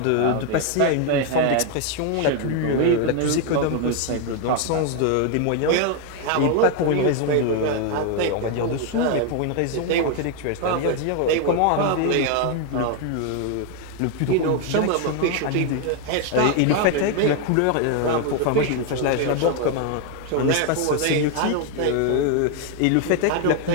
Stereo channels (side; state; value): both; different; correlation 0.01